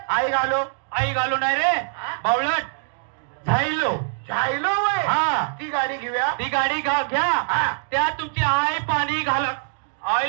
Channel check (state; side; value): silent; left; digital silence